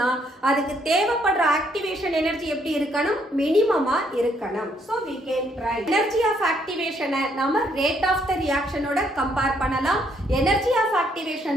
அதுக்கு தேவைப்படுற ஆக்டிவேஷன் எனர்ஜி எப்படி இருக்கணும்? மினிமமா இருக்கணும். So we can write energy of activation நம்ம rate of the reaction ஓட கம்பேர் பண்ணலாம். energy of activation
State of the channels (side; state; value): both; normal; correlation 0.70